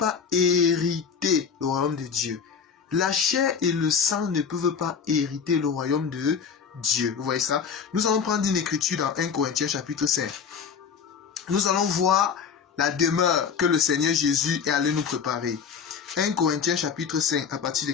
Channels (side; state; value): right; quieter; 6.5 dB